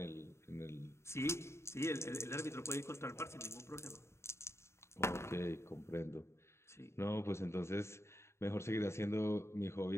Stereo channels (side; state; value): right; late; 0.13 ms